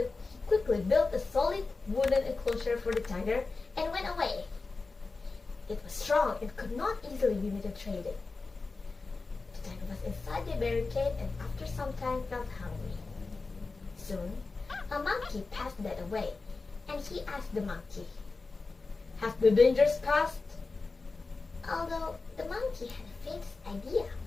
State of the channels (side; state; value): right; quieter; 3.9 dB